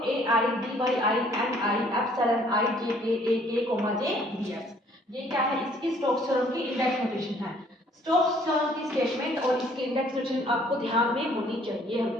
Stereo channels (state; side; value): normal; both; correlation 0.60